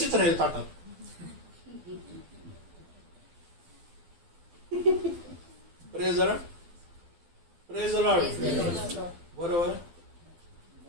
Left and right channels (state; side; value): late; left; 12 ms